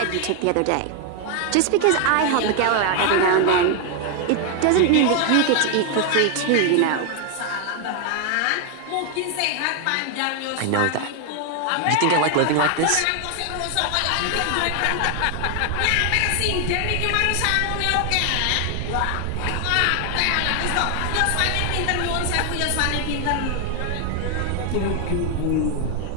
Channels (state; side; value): different; both; correlation 0.00